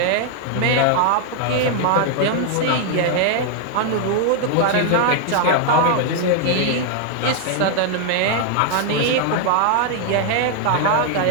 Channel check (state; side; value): different; both; correlation 0.00